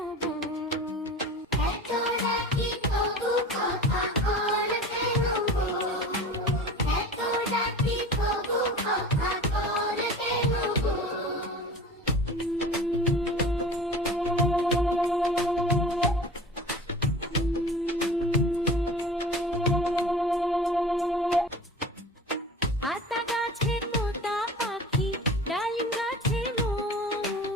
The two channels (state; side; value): normal; both; correlation 0.38